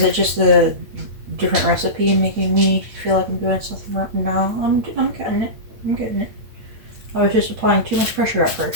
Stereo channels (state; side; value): late; left; 8.8 ms